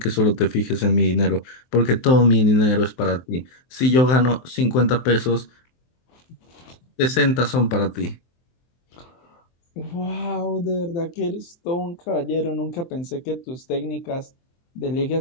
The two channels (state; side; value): late; right; 23 ms